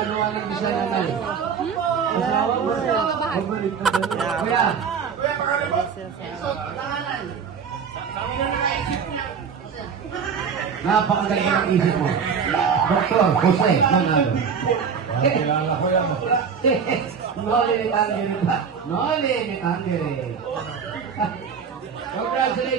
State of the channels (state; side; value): quieter; left; 6.5 dB